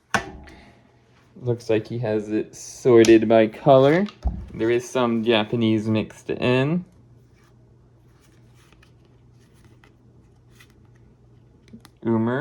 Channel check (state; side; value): identical; both; correlation 1.00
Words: Looks like he has it sorted by color. There is some Japanese mixed in.